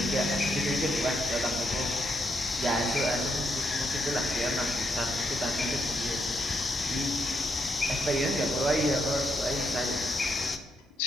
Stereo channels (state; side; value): normal; both; correlation 0.79